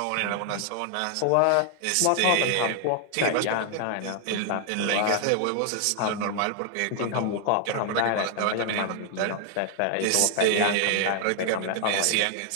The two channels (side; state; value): both; different; correlation 0.00